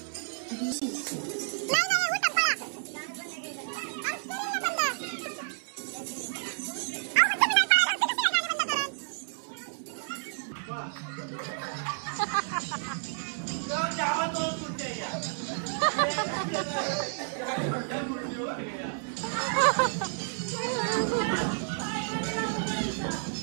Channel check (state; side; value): silent; left; digital silence